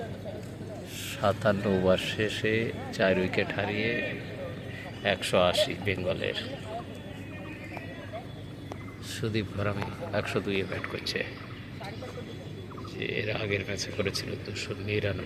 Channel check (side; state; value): both; identical; correlation 1.00